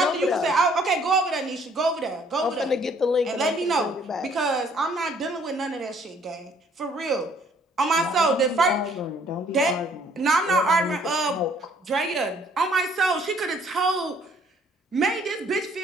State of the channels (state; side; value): normal; both; correlation 0.61